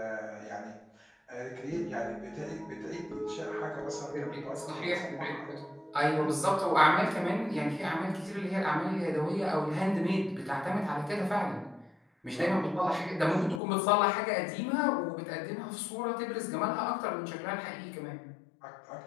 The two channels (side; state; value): right; drops out; at 13.6 s